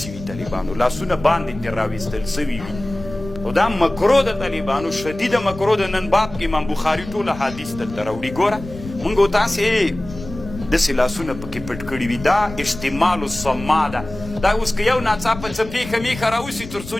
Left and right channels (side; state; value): left; noise; rumble, 13 dB below the sound